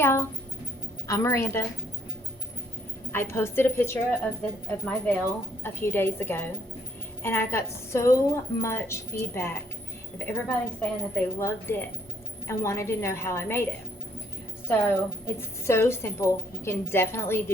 I'm Miranda. I posted a picture of my veil a few days ago, and I got so much feedback of everybody saying that they loved it and wanted to know how I made it. So it's so simple. You can definitely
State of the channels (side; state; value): both; normal; correlation 0.64